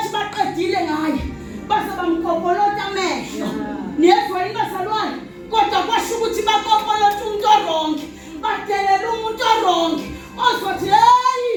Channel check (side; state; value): both; identical; correlation 1.00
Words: baqedile ngaye base bamkopolota amehlo. Niyezwa yini bazalwane? Kodwa kwasho ukuthi bakopolota umuntu oronke badelela umuntu oronke ozothi hey